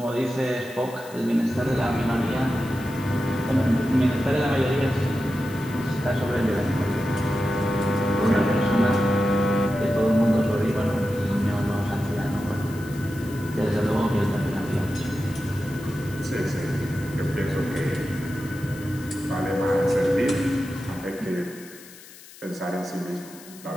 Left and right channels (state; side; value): noise; left; hiss, 19 dB below the sound